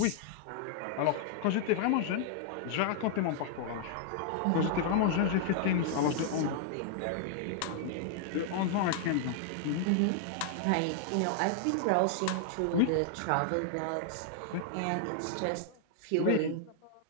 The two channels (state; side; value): different; both; correlation 0.00